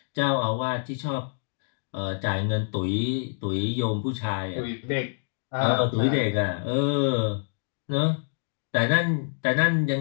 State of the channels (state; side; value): silent; right; digital silence